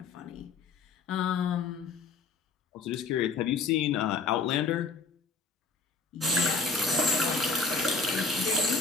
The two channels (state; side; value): quieter; right; 4.3 dB